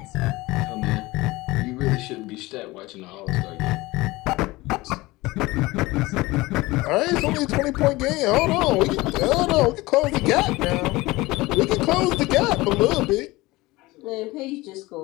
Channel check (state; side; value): quieter; right; 20.6 dB